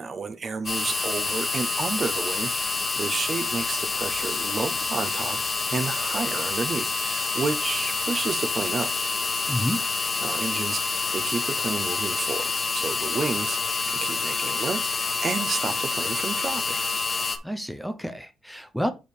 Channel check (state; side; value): normal; both; correlation 0.87